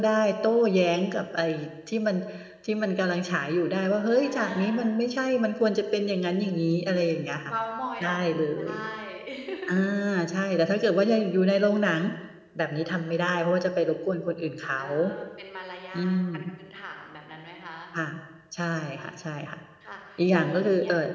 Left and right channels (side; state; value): both; identical; correlation 1.00